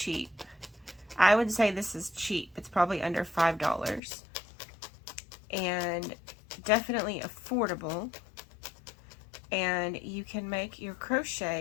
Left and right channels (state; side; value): drops out; right; at 4.0 s